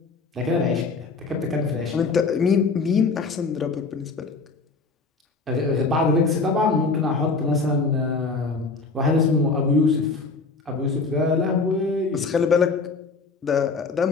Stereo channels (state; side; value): quieter; right; 4.1 dB